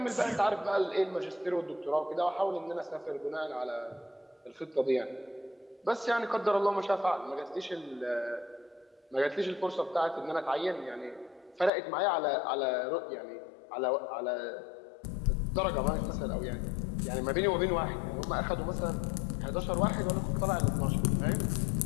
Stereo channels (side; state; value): right; drops out; at 11.7 s